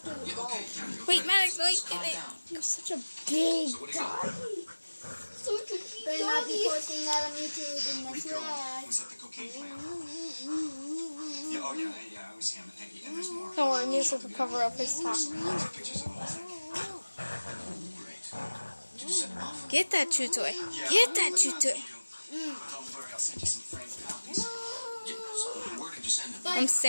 the ball. wait, Maddox, wait, wait. You're such a big doggy. Such a big Better not be doggy. posting that on YouTube in the Rico was at the cocaine plant. Yeah, oh yeah, it was him. And there's more. Don't worry, music will cover up his talk. Pictures of the whole thing. Great. Did you send them off? Get that chew toy. Get that chew toy. Don't worry, I'll send you some framed copies. Yeah, so where did you send them? I'm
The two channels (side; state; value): both; inverted; correlation -1.00